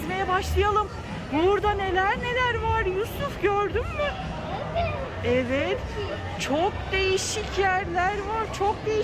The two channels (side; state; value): both; identical; correlation 1.00